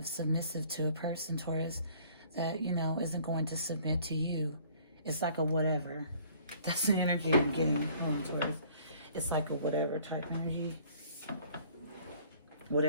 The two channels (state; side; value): inverted; both; correlation -0.56